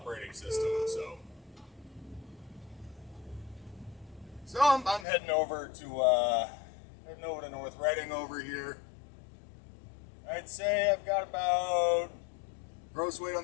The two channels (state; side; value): drops out; right; at 5.1 s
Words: system, so I'm heading over to North Reading over here. I'd say I've got about, gross weight on